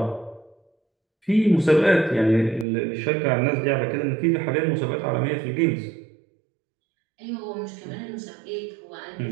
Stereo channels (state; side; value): drops out; left; at 2.7 s